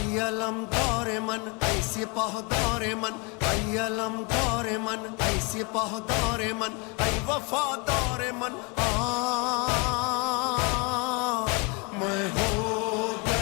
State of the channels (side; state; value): right; quieter; 31.4 dB